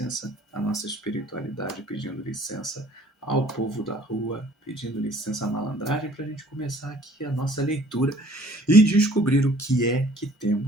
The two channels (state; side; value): normal; both; correlation 0.55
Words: à nossa espiritualidade, pedindo licença ao povo da rua, pedindo licença à malandragem para a gente começar aqui a nossa leitura e descobrir o que é que